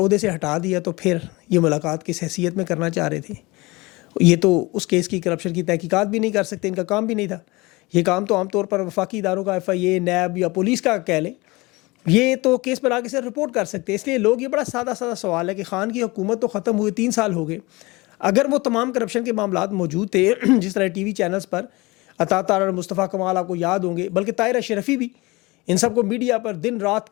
سے ہٹا دیا تو پھر یہ ملاقات کس حیثیت میں کرنا چاہ رہے تھے. یہ تو اس کیس کی کرپشن کی تحقیقات بھی نہیں کر سکتے, ان کا کام بھی نہیں تھا. یہ کام تو عام طور پر وفاقی اداروں کا FIA, نیب یا پولیس کا کہہ لیں, یہ تو کیس پر آگے سے رپورٹ کر سکتے. اس لیے لوگ, یہ بڑا سادہ سوال ہے کہ خان کی حکومت تو ختم ہوئے 3 سال ہو گئے, اگر وہ تمام کرپشن کے معاملات موجود تھے جس طرح TV چینلز پر عطا طاہر اور مصطفیٰ کمال آپ کو یاد ہوں گے, بلکہ طاہر اشرفی بھی, ان سب کو میڈیا پر دن رات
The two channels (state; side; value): quieter; right; 23.2 dB